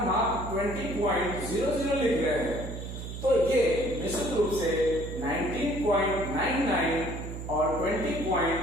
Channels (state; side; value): noise; right; hum, 8 dB below the sound